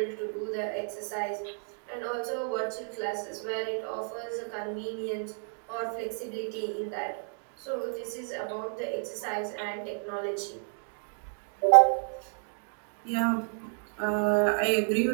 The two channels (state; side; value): silent; left; 57 dB below the other